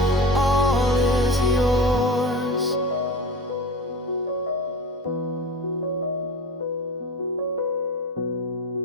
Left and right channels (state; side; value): normal; both; correlation 0.32